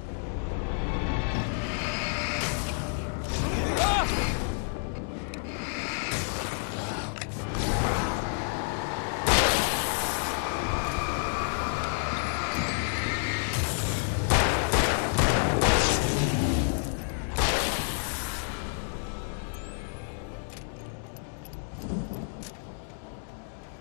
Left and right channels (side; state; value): right; silent; 58 dB below the other